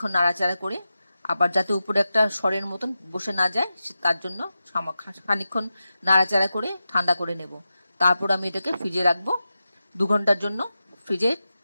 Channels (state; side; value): inverted; both; correlation -0.92